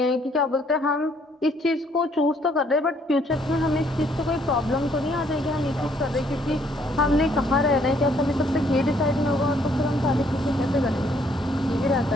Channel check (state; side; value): normal; both; correlation 0.66